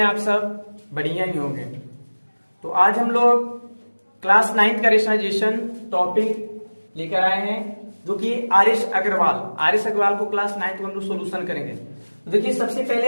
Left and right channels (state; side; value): inverted; both; correlation -1.00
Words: आप सब? बढ़िया ही होंगे। तो आज हम लोग क्लास 9 का रेशनलाइजेशन टॉपिक लेकर आए हैं, जो कि आरिश अग्रवाल को क्लास 9 को हम लोग सोल्यूशन करेंगे। तो देखिए, सबसे पहले